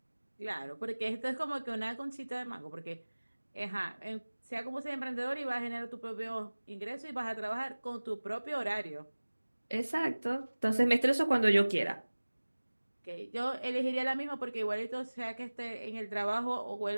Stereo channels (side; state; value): both; inverted; correlation -1.00